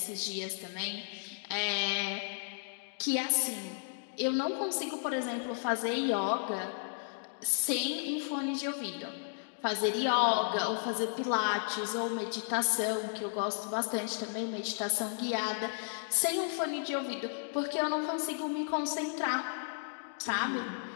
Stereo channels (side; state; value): right; silent; digital silence